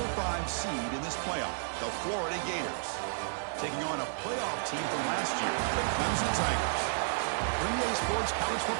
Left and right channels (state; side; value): silent; left; digital silence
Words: 5 seed in this playoff, the Florida Gators, taking on a playoff team from last year, the Clemson Tigers. Green Day Sports College